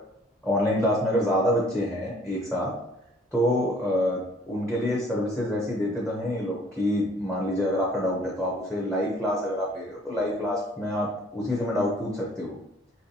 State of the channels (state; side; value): normal; both; correlation 0.57